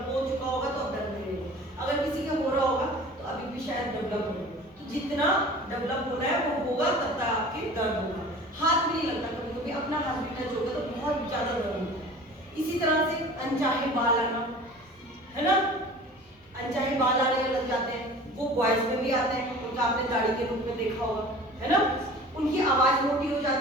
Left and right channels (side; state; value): both; normal; correlation 0.42